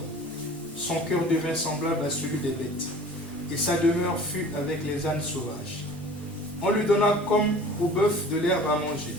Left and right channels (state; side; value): normal; both; correlation 0.44